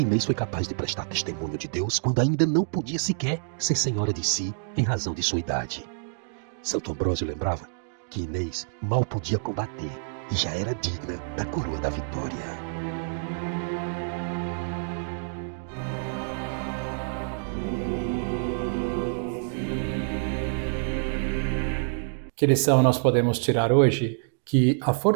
Inês foi capaz de prestar testemunho de Deus quando ainda não podia sequer ser senhora de si em razão de sua idade. Santo Ambrósio lembrava que Inês mal podia combater e já era digna da coroa da vitória. Que lição nós podemos tirar hoje? Que a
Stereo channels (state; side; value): silent; left; digital silence